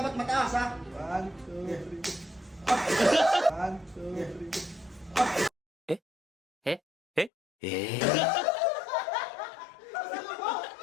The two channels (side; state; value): right; drops out; at 7.3 s